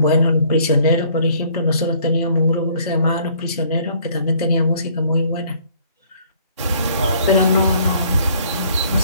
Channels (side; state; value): both; inverted; correlation -0.60